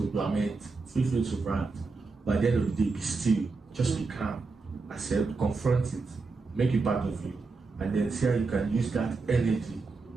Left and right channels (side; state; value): left; quieter; 4.1 dB